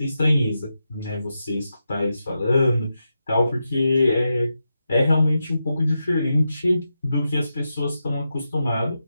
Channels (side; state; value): both; inverted; correlation -0.88